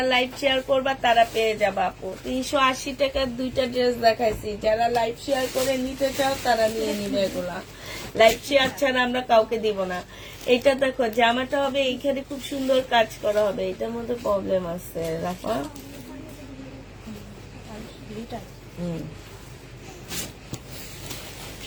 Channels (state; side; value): identical; both; correlation 1.00